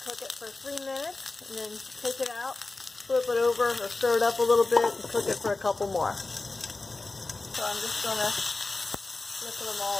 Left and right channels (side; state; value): right; quieter; 3.4 dB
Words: cook it for 3 minutes, and then take it out, flip it over or stir it up a little bit, and cook it for a couple more. So I'm just going to flip them